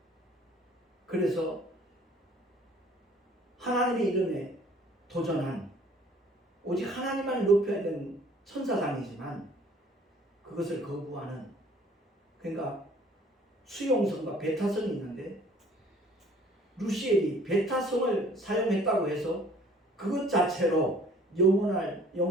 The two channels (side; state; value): both; normal; correlation 0.54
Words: 그래서 하나님의 이름에 도전한, 오직 하나님만 높여야 되는 천사장이지만 그것을 거부하는, 그러니까 수용성과 배타성이 있는데 루시엘이 배타성을 사용했다고 해서 그것 자체로 영원한